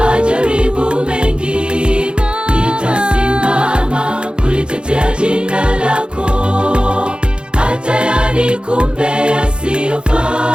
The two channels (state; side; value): late; left; 0.053 ms